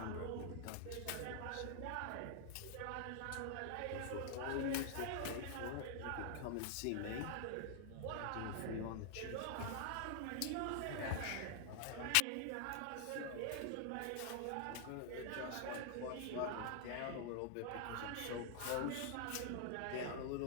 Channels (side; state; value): both; different; correlation 0.00